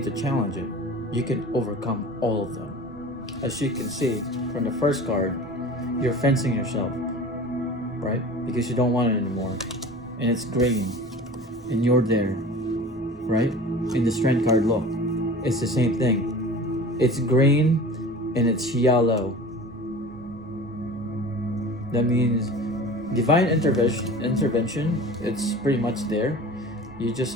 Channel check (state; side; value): noise; right; rumble, 24 dB below the sound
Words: to challenge it. You can overcome all of them. As you can see from the first card, you're fencing yourself, right? Because you don't want it anymore. And it's green. And you're there, right? In the Strength card, look. It's the same thing. It's green and it's yellow. That means divine intervention, it's pretty much there. You just